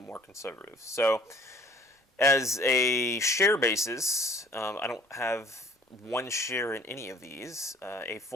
conservative. So as a share basis, I don't have one share in any of these, a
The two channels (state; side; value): normal; both; correlation 0.53